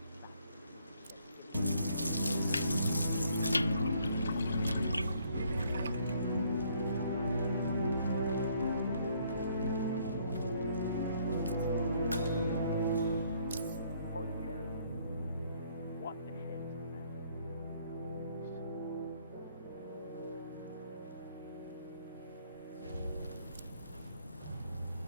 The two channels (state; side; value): inverted; both; correlation -0.66